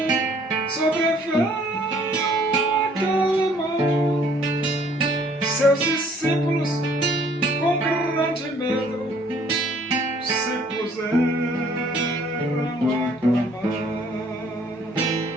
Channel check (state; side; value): normal; both; correlation 0.59